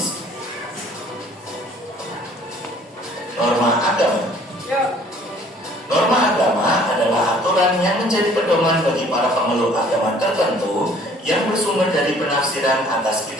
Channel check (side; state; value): both; normal; correlation 0.56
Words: Norma agama. Norma agama adalah aturan yang menjadi pedoman bagi para pemeluk agama tertentu yang bersumber dari penafsiran atas